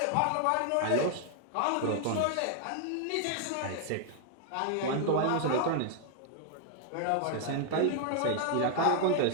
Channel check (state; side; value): different; both; correlation 0.00